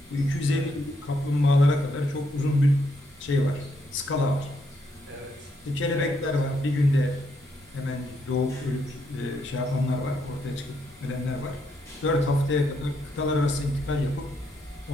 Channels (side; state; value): both; normal; correlation 0.76